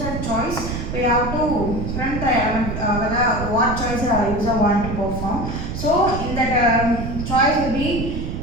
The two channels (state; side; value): noise; right; rumble, 5 dB below the sound